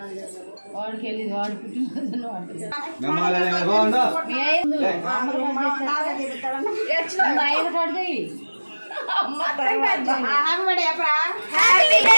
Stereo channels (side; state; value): both; inverted; correlation -1.00